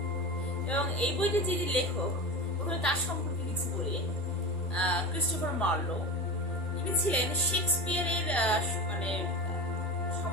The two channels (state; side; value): normal; both; correlation 0.28